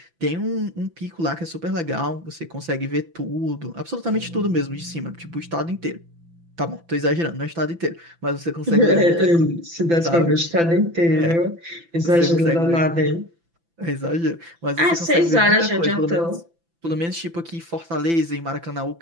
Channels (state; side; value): late; left; 5.9 ms